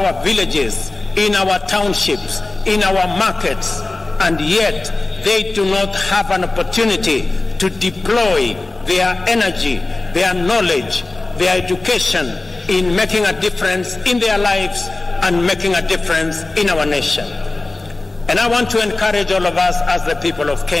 villages, in our townships, in our markets, and yet they do not have an opportunity to deploy their energy, their knowledge, their education in making a difference in their lives and making a difference in our nation. And I want to encourage all of us as the people of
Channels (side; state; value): right; quieter; 3.1 dB